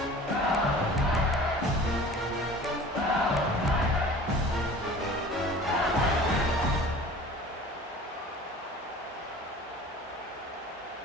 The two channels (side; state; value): both; normal; correlation 0.42